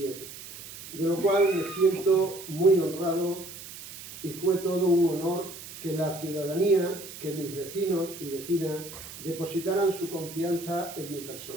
de lo cual me siento muy honrado y fue todo un honor que la ciudadanía, que mis vecinos y vecinas depositaran su confianza en mi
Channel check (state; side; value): noise; right; hiss, 13 dB below the sound